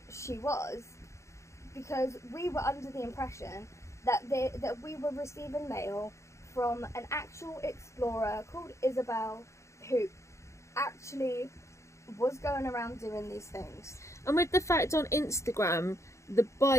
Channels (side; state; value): right; late; 0.14 ms